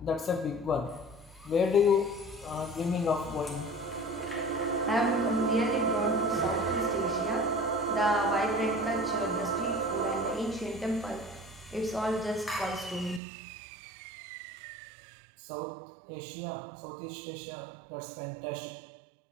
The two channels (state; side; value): drops out; left; at 13.2 s